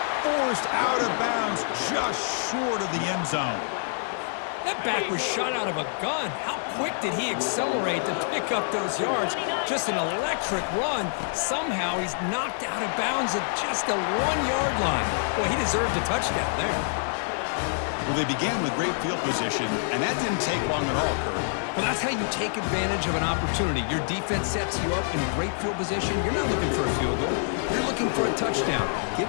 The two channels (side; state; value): right; silent; digital silence